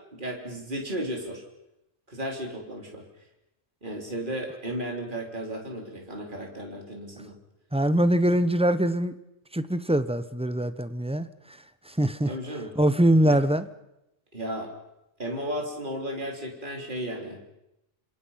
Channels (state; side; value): normal; both; correlation 0.69